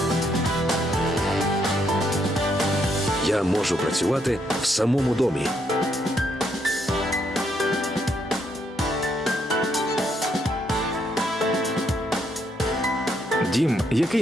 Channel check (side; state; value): both; normal; correlation 0.75